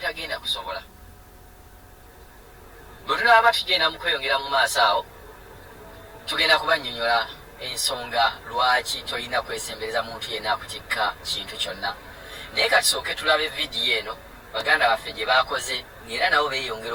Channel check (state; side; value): identical; both; correlation 1.00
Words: kusobola. Bwe tunaba tugenda mu kweyongera mu maaso awo tugenda kubannyonnyola ensonga lwaki tolina kwesembereza muntu yenna akutikka kintu kyonna. Naye katusooke tulabe vidiyo eno baganda baffe gye baakoze, era nabo beeyongera